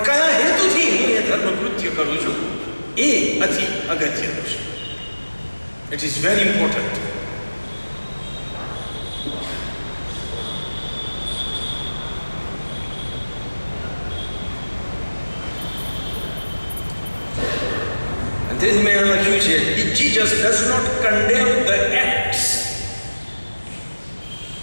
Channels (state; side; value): inverted; both; correlation -1.00